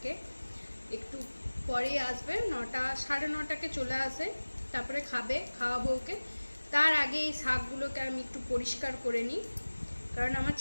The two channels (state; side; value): inverted; both; correlation -1.00